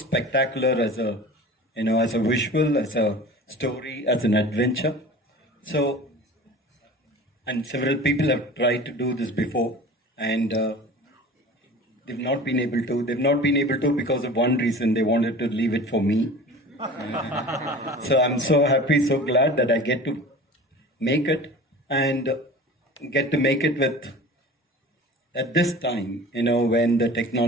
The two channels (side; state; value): both; normal; correlation 0.39